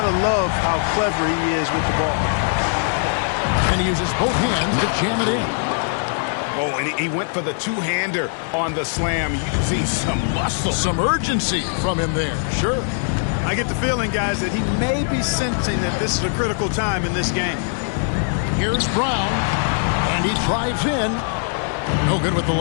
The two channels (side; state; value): right; silent; digital silence